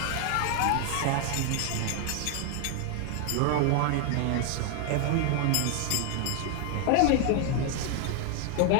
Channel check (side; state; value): both; different; correlation 0.00